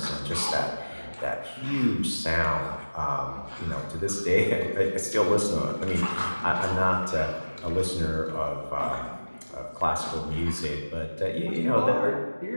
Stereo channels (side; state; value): both; inverted; correlation -1.00